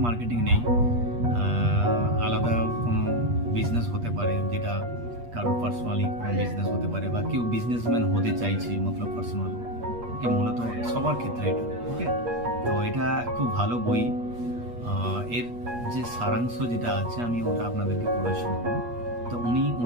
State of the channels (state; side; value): late; left; 8.4 ms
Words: মার্কেটিং নেই, আলাদা কোনো বিজনেস হতে পারে, যেটা কারোর পার্সোনালি কোনো বিজনেস হতে পারে, বা কেউ বিজনেসম্যান হতে চাইছে মতলব পার্সোনাল, মূলত সবার ক্ষেত্রে এটা। ওকে, তো এটা খুব ভালো বই। এর যে সারাংশ যেটা আছে আমি ওটা আপনাদেরকে পড়ে শোনাবো। তো